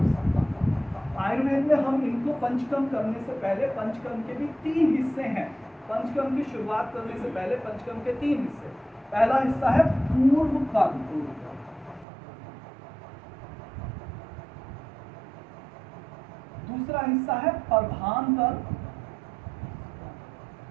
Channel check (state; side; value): drops out; left; at 12.1 s